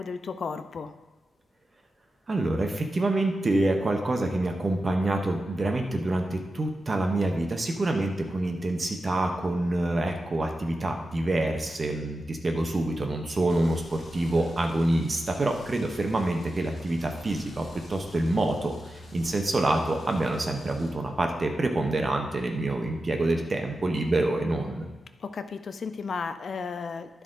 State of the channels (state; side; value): normal; both; correlation 0.91